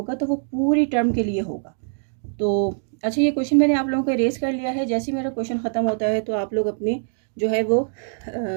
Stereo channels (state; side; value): silent; left; digital silence